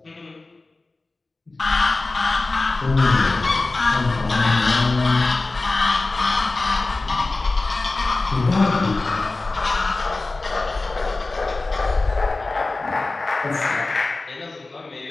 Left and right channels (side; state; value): right; quieter; 3.3 dB